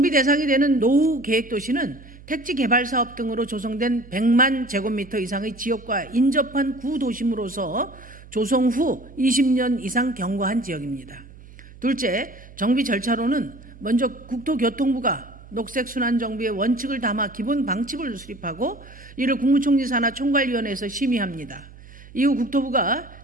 대상이 되는 노후 계획도시는 택지 개발 사업 등으로 조성된 100만 제곱미터 이상의 지역과 인접한 구도심으로서 조성 후 20년 이상 경과한 지역입니다. 둘째, 정비 절차로는 먼저 국토교통부가 녹색 순환 정비의 원칙을 담아 기본 방침을 수립하고 이를 국무총리 산하 총괄위원회에서 심의합니다. 이후 국토부가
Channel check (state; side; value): noise; right; hum, 20 dB below the sound